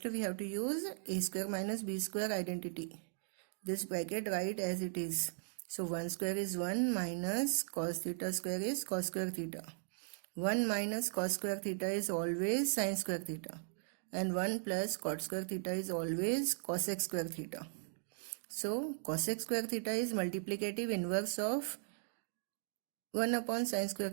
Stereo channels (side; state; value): left; silent; digital silence